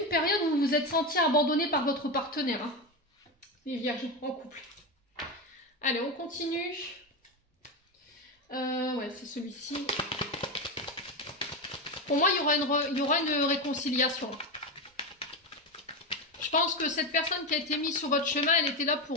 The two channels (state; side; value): normal; both; correlation 0.15